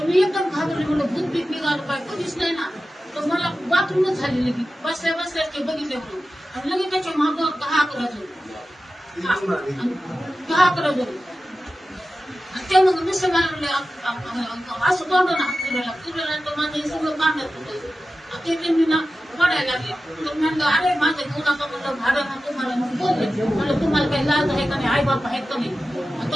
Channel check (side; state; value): both; normal; correlation 0.94